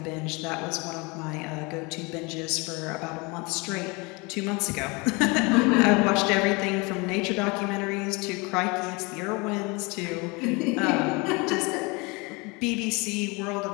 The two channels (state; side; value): quieter; right; 27.6 dB